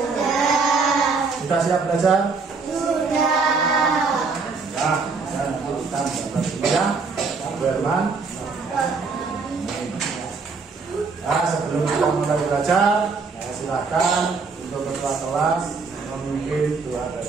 Sudah siap belajar? Ya, saya lanjutkan ya, Berman. Nah, sebelum kita mulai belajar, silakan untuk ketua kelas memimpin doa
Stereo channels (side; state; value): left; quieter; 4.5 dB